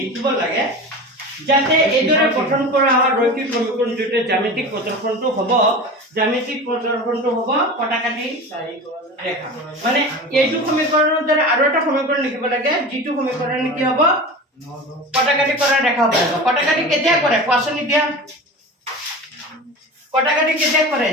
লাগে যাতে এদৰে গঠন কৰা হয় ৰৈখিক সমীকৰণ দুটা জ্যামিতিক প্ৰদৰ্শনটো হ'ব কটাকাটি ৰেখা মানে এইটো সমীকৰণৰ দ্বাৰা আৰু এটা সমীকৰণ লিখিব লাগে যিটো সমীকৰণ কি হ'ব কটাকাটি কৰা ৰেখা হ'ব কটাকাটি কেতিয়া কৰে কোৱাচোন এতিয়া কটাকাটি কেতিয়া কৰে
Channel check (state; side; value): normal; both; correlation 0.31